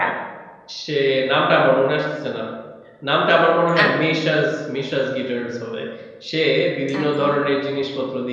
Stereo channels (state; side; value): identical; both; correlation 1.00